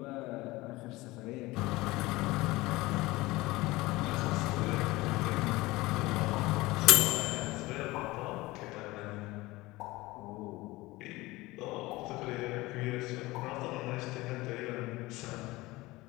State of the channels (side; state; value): right; quieter; 20.3 dB